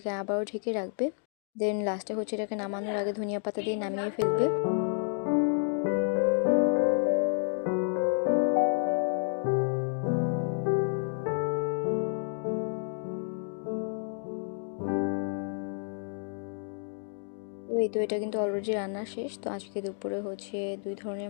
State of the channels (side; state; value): right; silent; 58 dB below the other